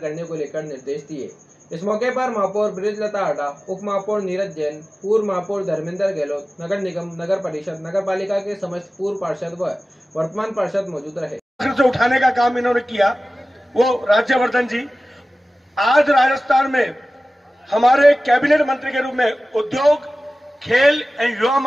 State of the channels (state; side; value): normal; both; correlation 0.96